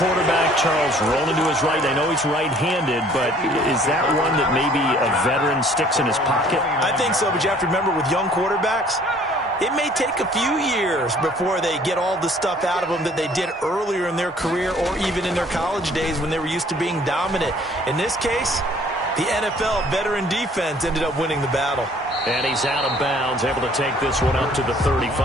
Charles, rolling to his right. I know he's right-handed, but is that one that maybe a veteran sticks in his pocket? I think so, but you have to remember with young quarterbacks, it may take a few years before they get all the stuff out of them that they did earlier in their career or even in their college days when they were used to being dominant. In this case, the NFL veteran defense ended up winning the battle. And he's out of bounds, able to take this one up to the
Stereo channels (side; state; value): both; normal; correlation 0.56